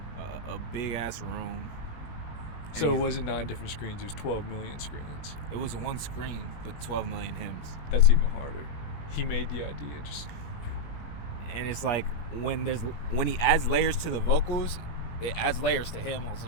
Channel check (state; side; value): late; right; 19 ms